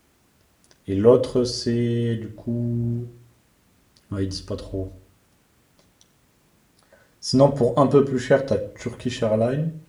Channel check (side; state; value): both; identical; correlation 1.00